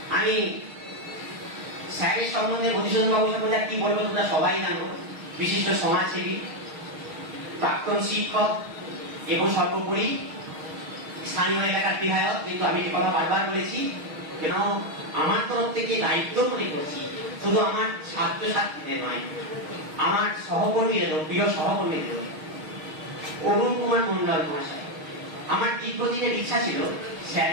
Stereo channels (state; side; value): late; left; 6.4 ms